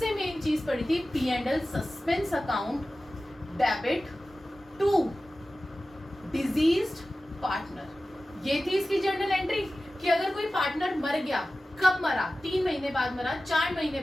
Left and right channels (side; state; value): both; normal; correlation 0.96